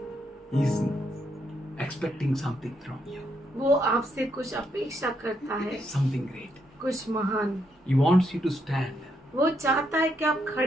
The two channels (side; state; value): both; normal; correlation 0.77